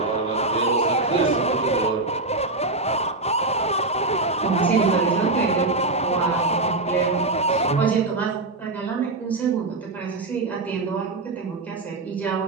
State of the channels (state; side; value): quieter; left; 3.2 dB